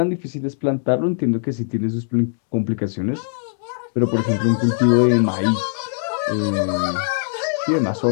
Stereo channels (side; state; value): right; silent; 65 dB below the other